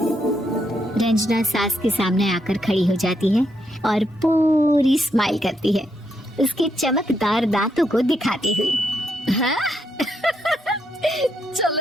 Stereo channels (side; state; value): both; normal; correlation 0.79